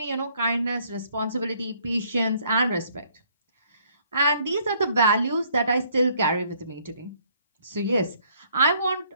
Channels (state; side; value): inverted; both; correlation -0.65